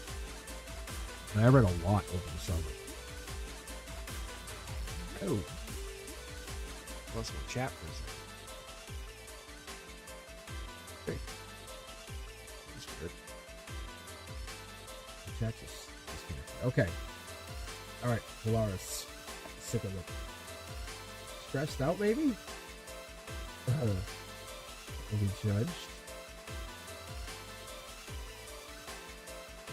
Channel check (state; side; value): identical; both; correlation 1.00